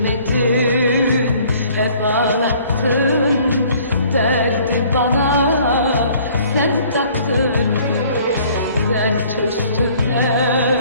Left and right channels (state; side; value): inverted; both; correlation -0.56